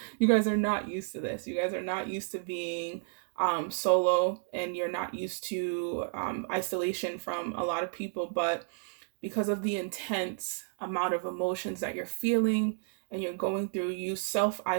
you guys are not used to this. You guys are not used to being solo, and you're not used to isolation from a lot of people. But because of the intense amount of emotions that you're feeling and you're going through, you self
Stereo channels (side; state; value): left; silent; digital silence